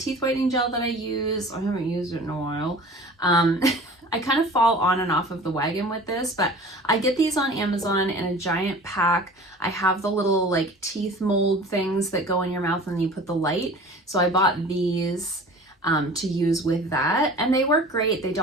whitening gel that I use. I haven't used it in a while. I kind of fall on and off of the wagon with this, but I get these on Amazon in a giant pack. I have the little like teeth mold things that go in your mouth and you put the light. So I bought these to use with that, and they work great. They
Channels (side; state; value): both; normal; correlation 0.42